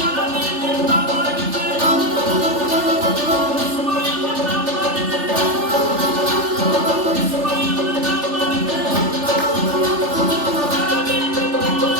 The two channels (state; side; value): late; left; 3.4 ms